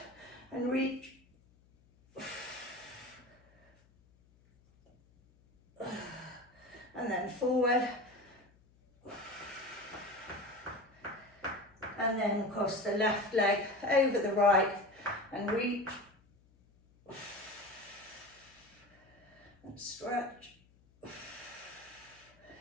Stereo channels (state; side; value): noise; left; hum, 30 dB below the sound